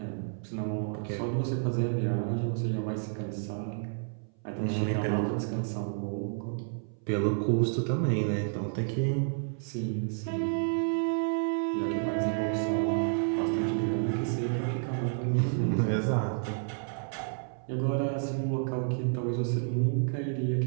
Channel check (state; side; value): silent; left; 58 dB below the other